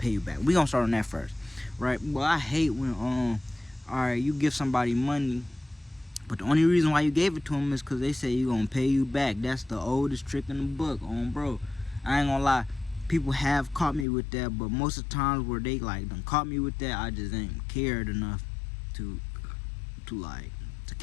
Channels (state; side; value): drops out; right; at 14.1 s